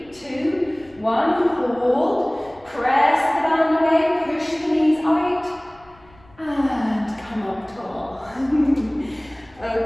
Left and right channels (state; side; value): noise; left; rumble, 28 dB below the sound